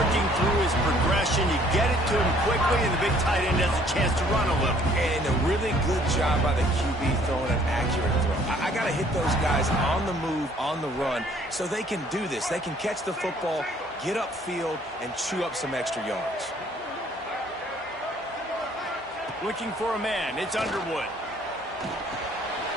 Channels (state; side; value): normal; both; correlation 0.60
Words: through his progression. You get it to him quickly, and the big tight end has a chance to run a little. And a really good job by the QB throwing an accurate throw. I got to hit those guys on the move, on the run, so they can do this. They can catch the football, get upfield, and chew up some extra yards. Looking for a man. It's Underwood.